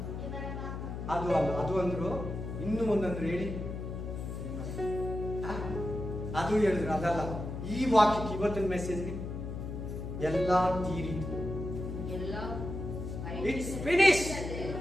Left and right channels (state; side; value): noise; left; hum, 6 dB below the sound